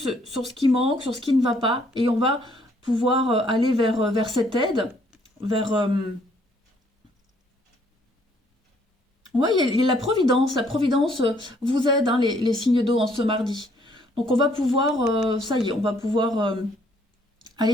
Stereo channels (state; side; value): normal; both; correlation 0.65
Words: sur ce qui manque, sur ce qui ne va pas. Et on va pouvoir aller vers cette aide, vers... Oui, il y a la Providence. La Providence vous aide, hein, les signes d'eau en ce mardi. Donc on va pouvoir, ça y est, on va pouvoir